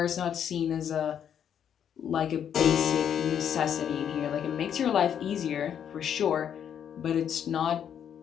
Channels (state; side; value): quieter; right; 8.8 dB